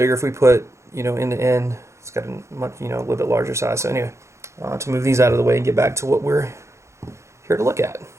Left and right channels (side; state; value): left; late; 0.14 ms